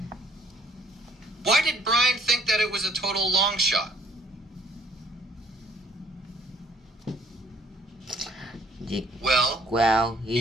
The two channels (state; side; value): normal; both; correlation 0.60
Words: Why did Brian think that it was a total long shot? Well,